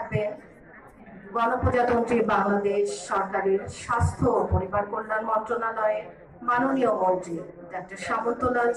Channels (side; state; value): both; identical; correlation 1.00